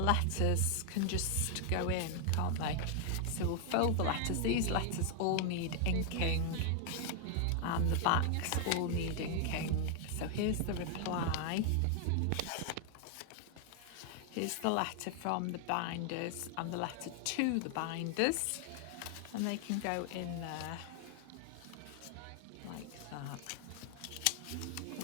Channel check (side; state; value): both; different; correlation 0.00